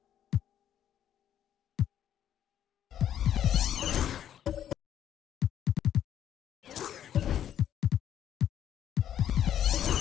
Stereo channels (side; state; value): right; quieter; 10.3 dB